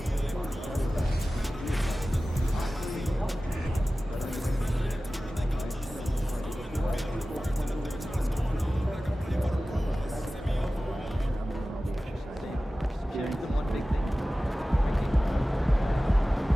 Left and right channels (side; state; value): both; normal; correlation 0.96